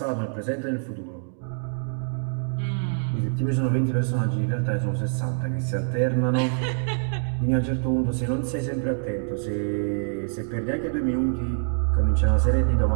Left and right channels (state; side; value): silent; left; digital silence